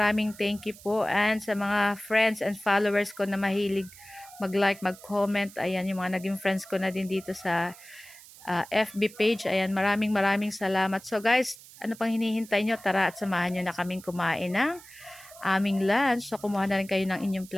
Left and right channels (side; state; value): right; noise; hiss, 20 dB below the sound